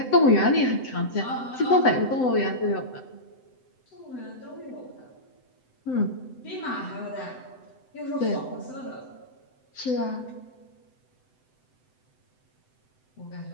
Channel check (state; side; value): late; right; 7.8 ms